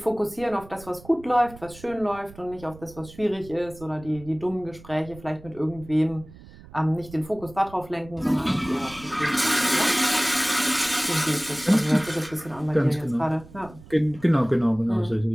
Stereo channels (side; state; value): right; noise; rumble, 19 dB below the sound